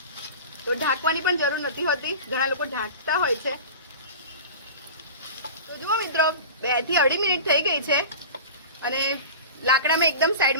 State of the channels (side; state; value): both; inverted; correlation -0.34